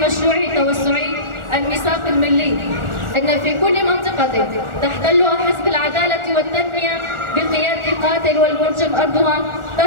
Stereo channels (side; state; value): left; late; 1.4 ms